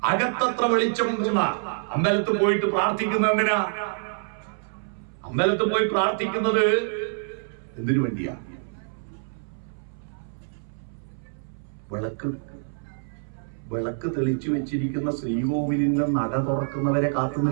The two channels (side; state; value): left; silent; 61 dB below the other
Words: അകത്തത്ര വെളിച്ചമുണ്ടെന്ന. അമ്പലത്തിൽ പോയിട്ട് പ്രാർത്ഥിക്കുന്നതിനാ? അമ്പലത്തിൽ പോയി പ്രാർത്ഥിക്കുന്നത് എന്തിനു വേണ്ടിയാ? വിളക്ക് തെളിച്ചു വെച്ചിരിക്കുന്ന ശ്രീകോവിലിന്റെ നട തുറക്കുന്നവരെ കാത്തു